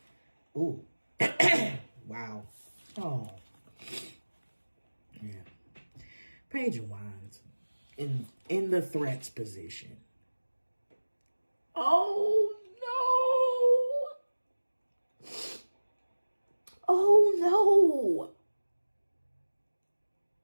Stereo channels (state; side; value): inverted; both; correlation -1.00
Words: Ooh. Wow. Oh. Yeah. Page of Wands. In the threats position. Oh no. Oh no.